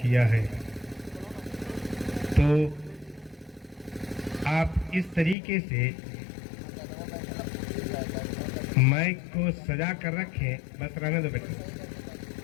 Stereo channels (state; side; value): drops out; right; at 5.4 s